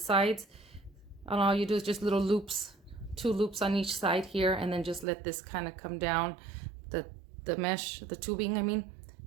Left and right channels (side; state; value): left; drops out; at 5.1 s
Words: And all you do is just little loops, 2 loops on each side here, and then just let this kind of come down, the mesh, the tubing I mean,